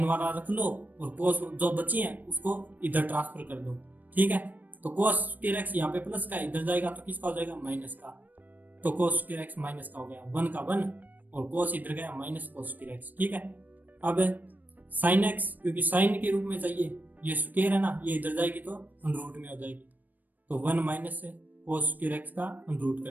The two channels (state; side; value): late; left; 0.086 ms